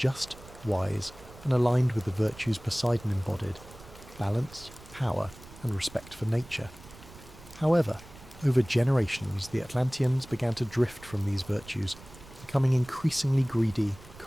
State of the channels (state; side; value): noise; right; rumble, 19 dB below the sound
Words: wise, and aligned with the virtues Poseidon embodied: balance, power, and respect for nature. However, over generations, the Atlanteans began to drift from these virtues, becoming increasingly greedy,